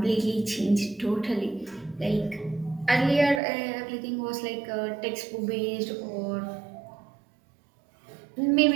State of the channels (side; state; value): left; drops out; at 3.4 s